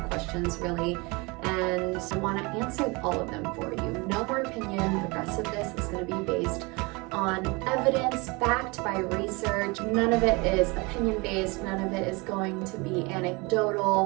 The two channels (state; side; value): quieter; left; 26.8 dB